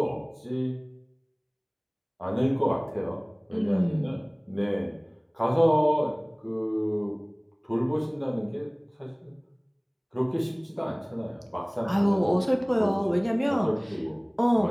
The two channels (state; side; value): identical; both; correlation 1.00